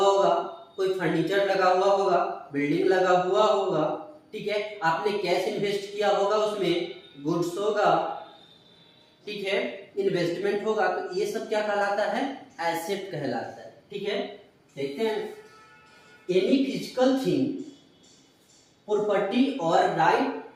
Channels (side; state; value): both; identical; correlation 1.00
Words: होगा, कोई फर्नीचर लगा हुआ होगा, बिल्डिंग लगा हुआ होगा, ठीक है। आपने कैश इन्वेस्ट किया होगा, उसमें गुड्स होगा, ठीक है, इन्वेस्टमेंट होगा, तो ये सब क्या कहलाता है? एसेट कहलाता है। ठीक है। देखते हैं, एनी फिजिकल थिंग, प्रॉपर्टी और